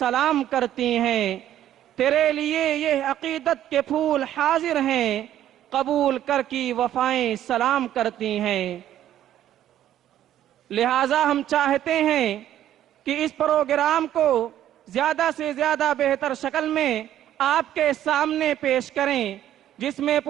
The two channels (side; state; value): left; quieter; 11.8 dB